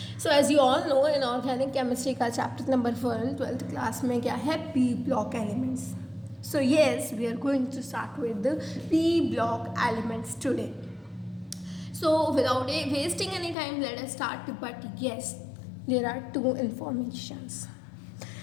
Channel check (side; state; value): right; drops out; at 13.6 s